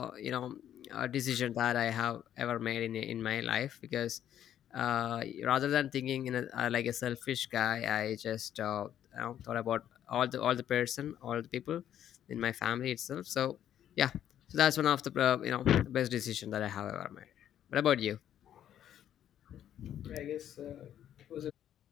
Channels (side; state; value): right; quieter; 10.6 dB